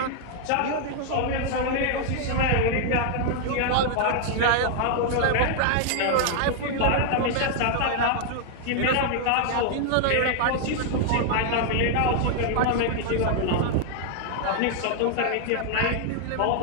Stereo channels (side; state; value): both; different; correlation 0.00